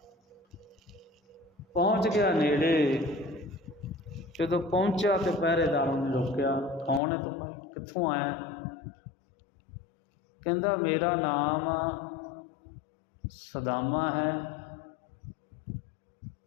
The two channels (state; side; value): drops out; right; at 7.0 s